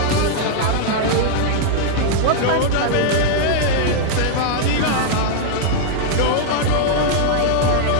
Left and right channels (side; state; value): both; different; correlation -0.01